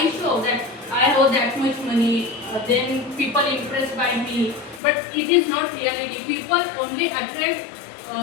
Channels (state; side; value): drops out; right; at 4.8 s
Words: show that I have that much money, then people impressed by me. But it is not reality. People only attract